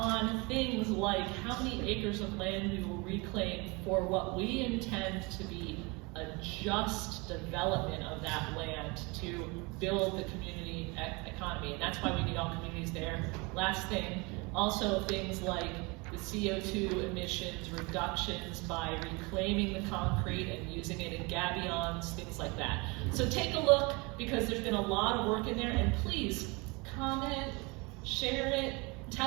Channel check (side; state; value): left; quieter; 27.4 dB